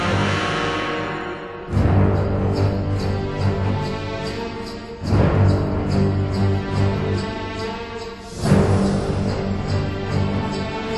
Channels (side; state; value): both; identical; correlation 1.00